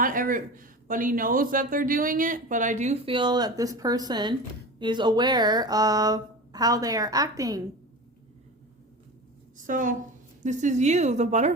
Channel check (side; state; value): both; normal; correlation 0.31